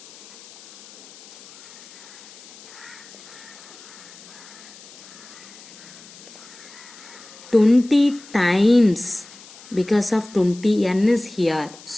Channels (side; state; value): left; noise; hiss, 19 dB below the sound